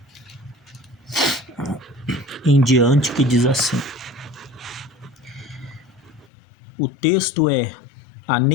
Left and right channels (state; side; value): drops out; right; at 6.2 s